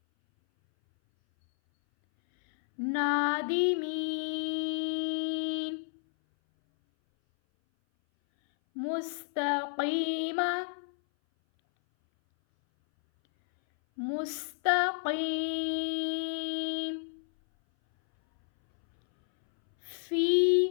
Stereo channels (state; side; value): silent; right; 57 dB below the other